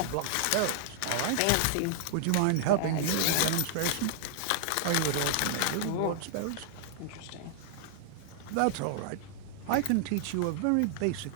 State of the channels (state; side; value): different; both; correlation -0.01